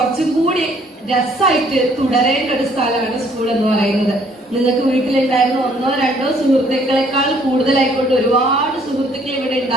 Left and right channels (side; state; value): both; normal; correlation 0.62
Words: കൂടി രസമായിട്ട് തുടരേണ്ട ഒരു സ്ഥലമാണ് സ്കൂൾ എന്ന് പറയുന്നത്. നിങ്ങൾക്ക് വീട്ടിലുണ്ടായിരുന്ന 1ഓ 2ഓ സുഹൃത്തുക്കളെക്കാൾ കൂടുതലായിക്കൊണ്ട് ഒരുപാട് സുഹൃത്തുക്കൾ ഇവിടെ